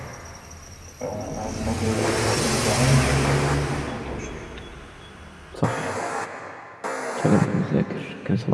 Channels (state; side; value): identical; both; correlation 1.00